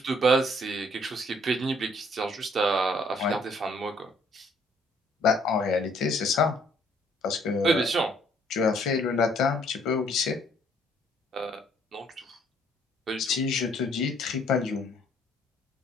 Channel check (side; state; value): both; normal; correlation 0.63